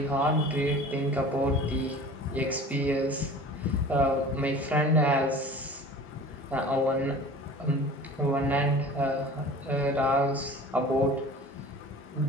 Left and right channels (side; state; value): both; normal; correlation 0.41